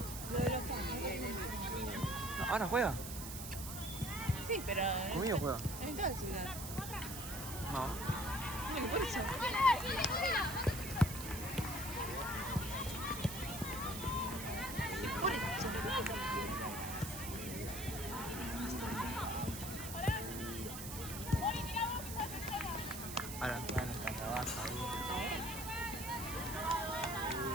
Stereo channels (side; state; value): right; noise; hiss, 8 dB below the sound